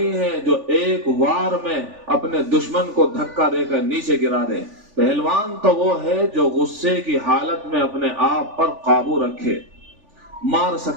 ہے جو ایک وار میں اپنے دشمن کو دھکا دے کر نیچے گرا دے، پہلوان تو وہ ہے جو غصے کی حالت میں اپنے آپ پر قابو رکھے، مار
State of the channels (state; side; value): late; left; 3.4 ms